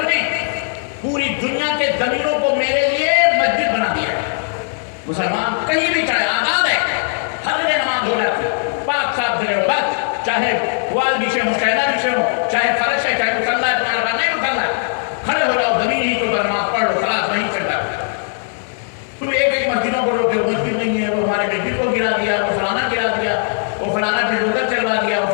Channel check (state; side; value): silent; right; 67 dB below the other